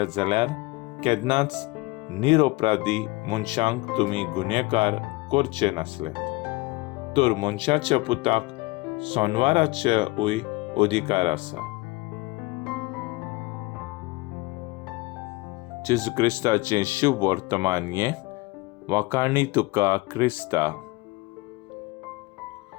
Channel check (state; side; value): quieter; right; 23.1 dB